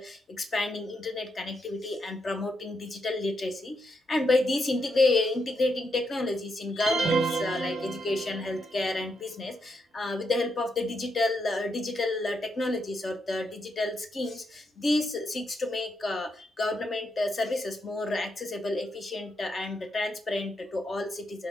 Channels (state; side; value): normal; both; correlation 0.81